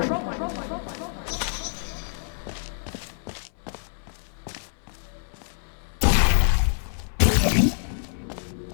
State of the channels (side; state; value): right; silent; 59 dB below the other